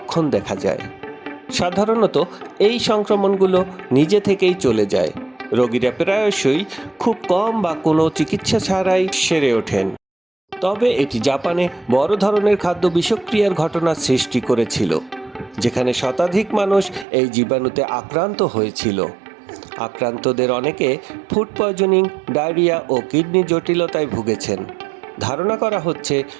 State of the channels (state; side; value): drops out; left; at 17.1 s